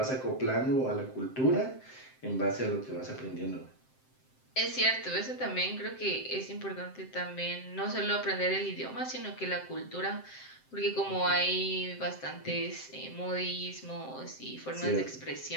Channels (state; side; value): late; right; 7.7 ms